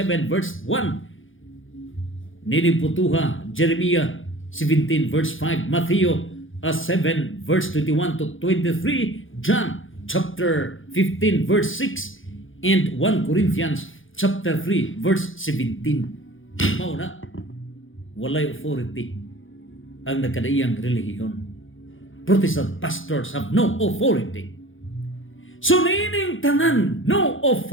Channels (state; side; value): late; right; 0.58 ms